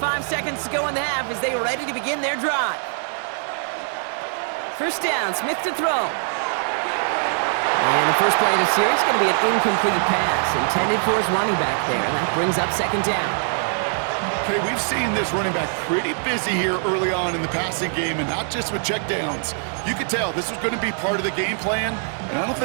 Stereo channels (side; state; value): left; silent; 60 dB below the other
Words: seconds to go in the half as they are ready to begin their drive. 1st down, Smith to throw. And the first play of the series is going to be an incomplete pass intended for his running back there, and that brings up 2nd down. Okay, we've seen this running back pretty busy here early on in the passing game, and not just with checkdowns. You could tell this was going to be part of the game plan, and I don't